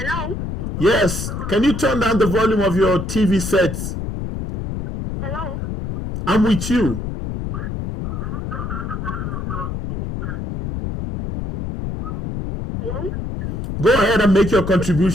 Yes. Can you turn down the volume of your TV set? Hello? I'm with you. Hello? Go ahead and make your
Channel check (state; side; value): noise; left; rumble, 5 dB below the sound